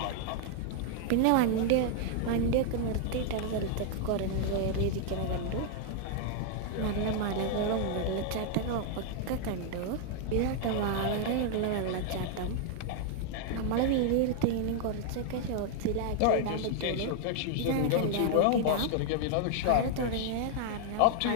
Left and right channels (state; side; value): different; both; correlation 0.00